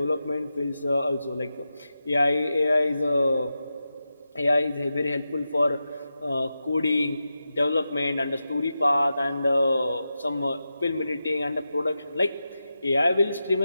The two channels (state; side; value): inverted; both; correlation -0.91